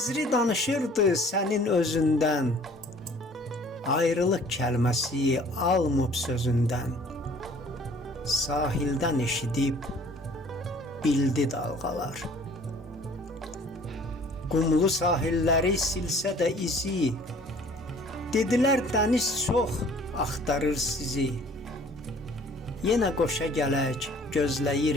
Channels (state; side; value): normal; both; correlation 0.52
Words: danışırdı sənin özündən. Ayrılıq kəlməsi almıb sözündən, sahildən eşidib bildi dalğalar. Qumlu sahilləri silsə də izi, dedilər dəniz çox axtarır sizi. Yenə qoşa gələk